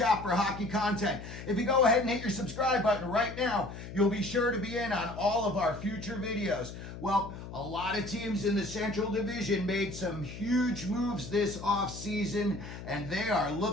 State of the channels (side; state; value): left; noise; hum, 11 dB below the sound